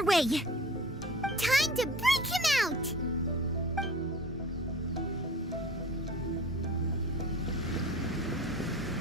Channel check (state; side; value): normal; both; correlation 0.41